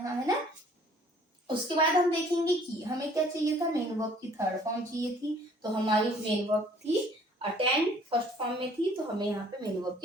है ना। उसके बाद हम देखेंगे कि हमें क्या चाहिए था? मेन वर्ब की थर्ड फॉर्म चाहिए थी। तो हमारी मेन वर्ब थी अटेंड, फर्स्ट फॉर्म में थी, तो हमें यहाँ पे मेन वर्ब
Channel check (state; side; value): normal; both; correlation 0.56